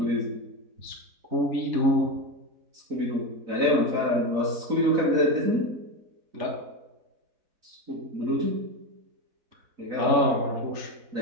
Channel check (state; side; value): late; left; 4.0 ms